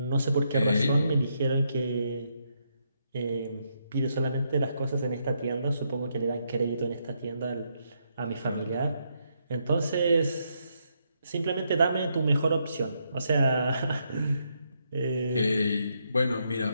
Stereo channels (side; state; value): both; inverted; correlation -0.78